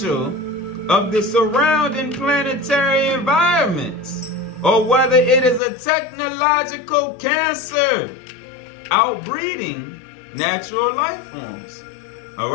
of the surrounding planetary environments, or whether it is a technological cancer outbreeding natural life forms. All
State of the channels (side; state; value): right; drops out; at 5.6 s